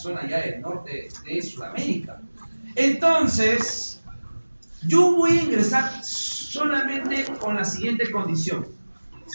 ya del norte de Sudamérica. Entonces, yo voy a ingresar solamente con la siguiente condición.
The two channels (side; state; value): both; inverted; correlation -1.00